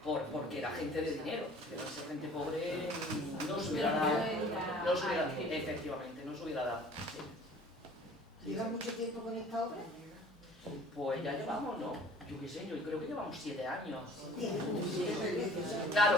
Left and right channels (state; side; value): normal; both; correlation 0.49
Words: porque era gente de dinero, pero esa gente pobre no se hubiera dado, efectivamente, no se hubiera dado. ¿Lleva mucho tiempo con esta obra? Pues ya llevamos, ¿no? Yo qué sé, yo creo que llevamos 7 años. Claro,